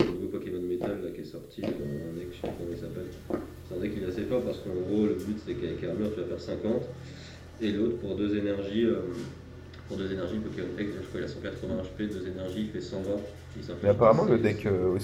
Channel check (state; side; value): identical; both; correlation 1.00